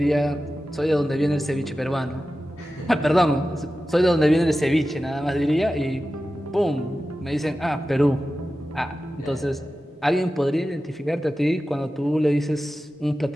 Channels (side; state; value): both; normal; correlation 0.94